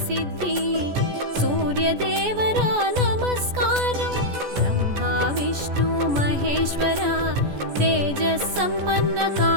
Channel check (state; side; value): late; left; 14 ms